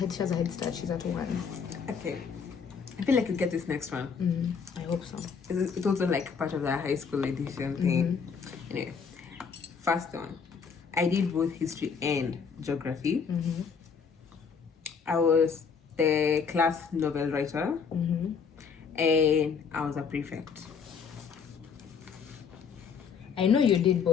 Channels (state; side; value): quieter; right; 6.1 dB